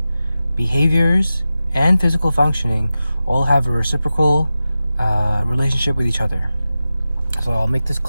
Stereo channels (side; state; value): both; inverted; correlation -0.93